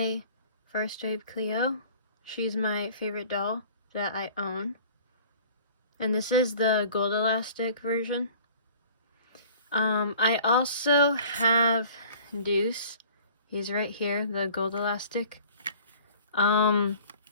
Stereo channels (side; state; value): both; inverted; correlation -0.48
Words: First Wave Cleo. She's my favorite doll that I own. And this is the gold elastic version. I also have Deuce. He's right here, the gold elastic.